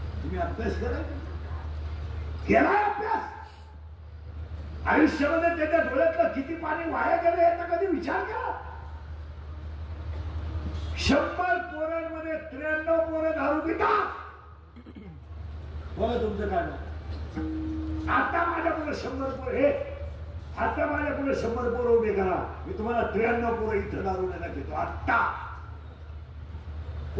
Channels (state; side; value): identical; both; correlation 1.00